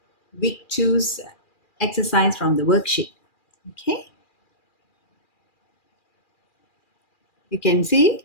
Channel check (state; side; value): late; right; 2.4 ms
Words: Week 2's exercise from the worksheet. Okay, you can